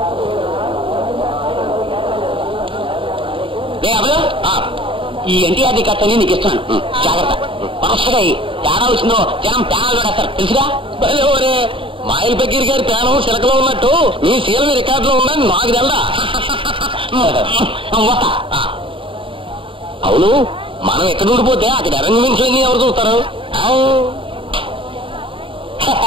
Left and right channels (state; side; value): late; left; 0.25 ms